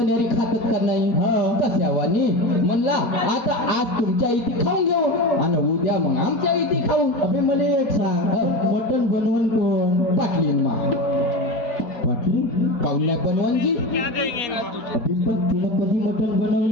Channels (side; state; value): right; late; 4.0 ms